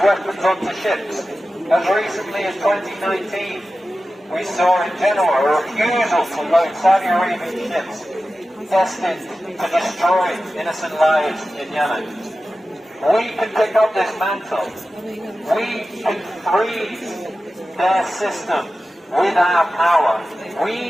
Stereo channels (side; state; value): both; normal; correlation 0.94